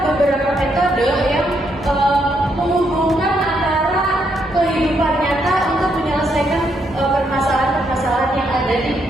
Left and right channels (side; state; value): both; normal; correlation 0.76